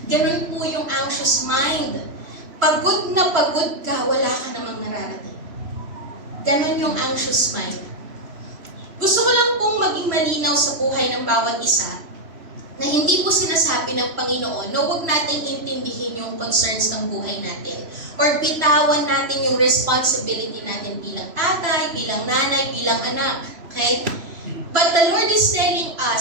Ganun po yung anxious mind. Pagod na pagod ka, wala ka namang nararating. Ganon yung anxious mind. Gusto ko lang pong maging malinaw sa buhay ng bawat isa na hindi po sinasabi ng Panginoon na huwag natin intindihin yung concerns ng buhay natin or bitawan natin yung responsibility natin bilang tatay, bilang nanay, bilang anak. Okay? But the Lord is telling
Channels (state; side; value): late; left; 3.0 ms